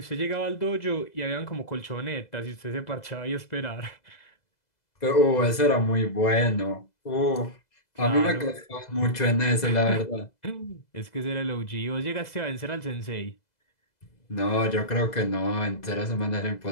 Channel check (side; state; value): right; late; 2.0 ms